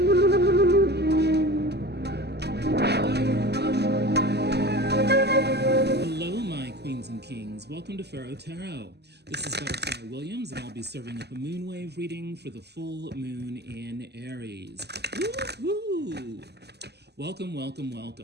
my queens and kings. Welcome to Pharaoh Tarot. This is Butterfly Williams, and I'll be serving up a moonwave reading for the full moon in Aries. Woohoo! Welcome, welcome,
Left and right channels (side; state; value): left; late; 0.49 ms